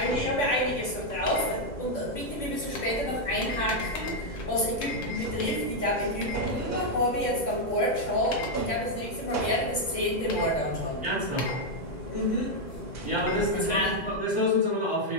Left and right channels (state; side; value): late; right; 2.0 ms